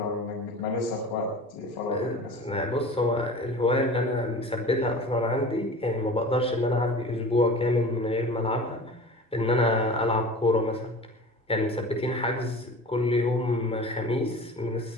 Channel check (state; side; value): normal; both; correlation 0.38